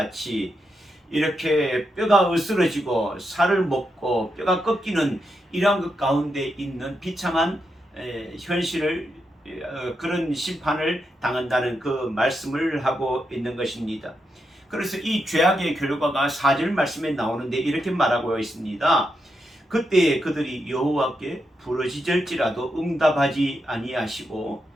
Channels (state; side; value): normal; both; correlation 0.84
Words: 이렇게 뼈가 으스러지고 살을 먹고 뼈가 꺾이는 이러한 것 가운데 있는 비참한 현실을 그런 심판을 당한다는 그 말씀을 하고 있는 것입니다. 그래서 이 죄악의 결과가 4절 말씀에 나오는데 이렇게 말하고 있습니다. 그때 그들이 여호와께 부르짖을지라도 응답하지 아니하시고